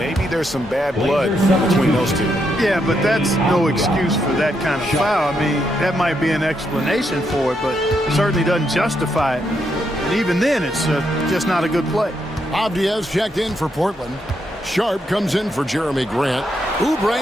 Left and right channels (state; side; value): normal; both; correlation 0.79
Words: there's some bad blood between those two. Yeah, but that's no excuse for that kind of foul. I mean, that might be an explanation for it, but certainly doesn't justify it. And even then, it's just not a good play. Avdia's checked in for Portland. Sharp comes in for Jeremy Grant.